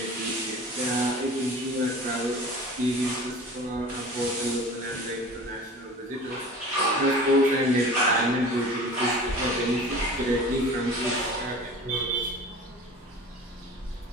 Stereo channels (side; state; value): both; normal; correlation 0.40